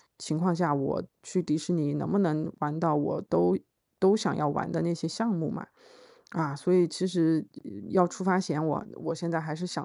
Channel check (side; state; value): both; identical; correlation 1.00